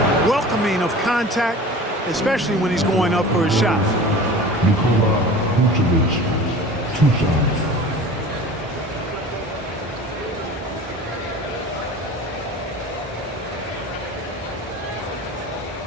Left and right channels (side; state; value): both; normal; correlation 0.39